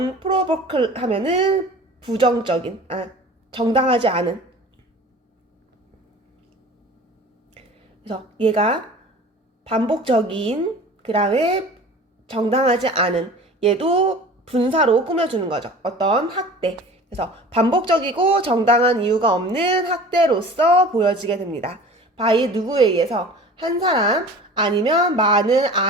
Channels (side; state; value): both; normal; correlation 0.41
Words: 하면은 정당하지 않은. 그래서 얘가 반복적인, 그 다음에 정당하지 않은, 얘도 분사로 꾸며주는 거죠. 어떤 학대. 그래서 반복적이고 정당한 이유가 없는 학대로서 보여지게 됩니다. by 누구에 의해서? 한 사람 아니면 많은